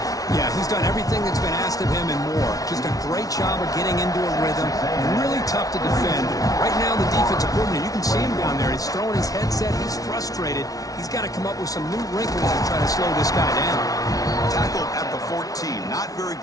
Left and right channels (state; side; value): late; right; 0.18 ms